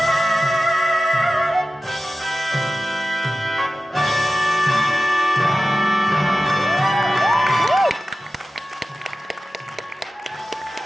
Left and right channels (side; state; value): both; normal; correlation 0.95